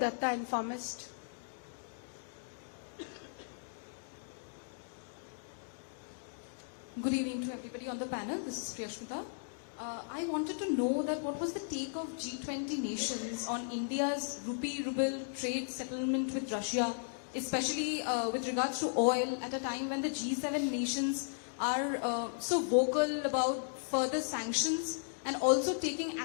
Informist. Good evening to everybody on the panel. This is Priyasmita. I wanted to know that what was the take of G20 nations on India's rupee-ruble trade settlement with Russia, especially with regards to oil, at a time when the G7 nations are so vocal about further sanctions and also taking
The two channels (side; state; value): right; silent; digital silence